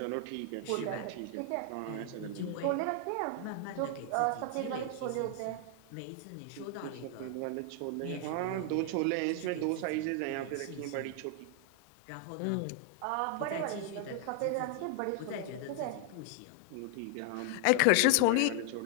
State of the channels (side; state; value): both; different; correlation 0.00